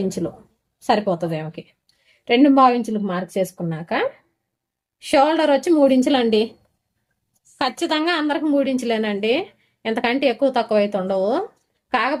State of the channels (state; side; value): identical; both; correlation 1.00